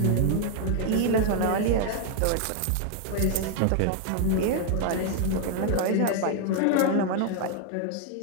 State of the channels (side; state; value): both; different; correlation 0.00